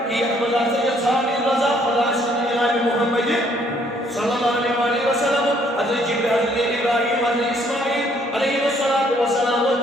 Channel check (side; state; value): both; normal; correlation 0.65